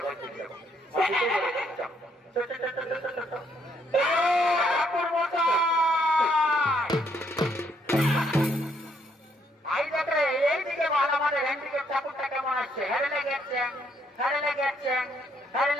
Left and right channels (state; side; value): normal; both; correlation 0.71